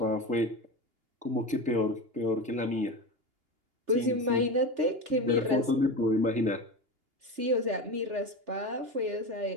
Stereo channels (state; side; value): late; left; 3.4 ms